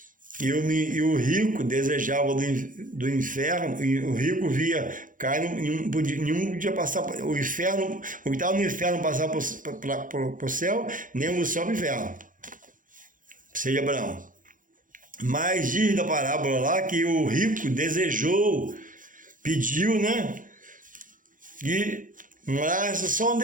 E o rico desejava do inferno, e o rico via cair, nenhum podia passar o inferno, o que estava no inferno passar para o céu, nem o céu para o inferno. Seio de Abraão. Mas diz da parábola lá que o rico desejou, pediu, né? E morasse só um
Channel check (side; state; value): left; late; 0.38 ms